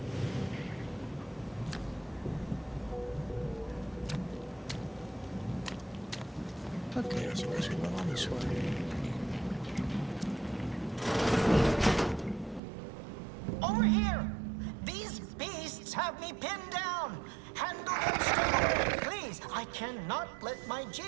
Okay, so I guess we'll go on this way. Over here! These beasts have me pinned down! Handle them straight! Please, I cannot let my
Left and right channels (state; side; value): drops out; left; at 12.6 s